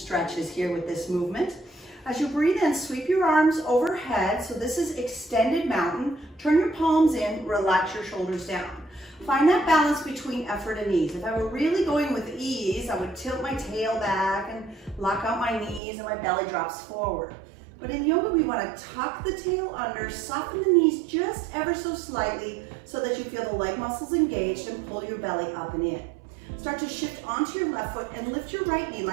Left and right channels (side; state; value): left; drops out; at 15.8 s